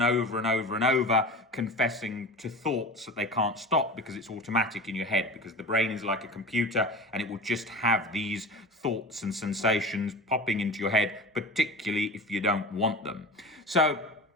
over and over and over, confessing to thoughts that they can't stop because it's automatic in your head, because the brain is like a computer and it will just have these thoughts and sensations popping into your head, particularly if you don't want them. So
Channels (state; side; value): normal; both; correlation 0.32